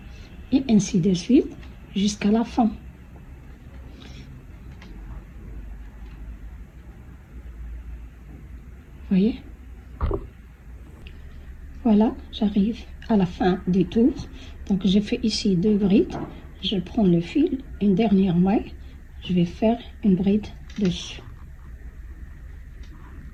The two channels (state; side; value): identical; both; correlation 1.00